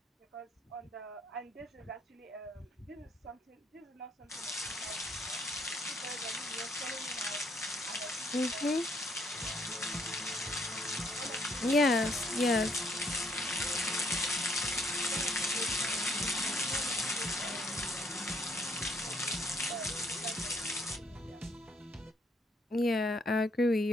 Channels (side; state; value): both; normal; correlation 0.69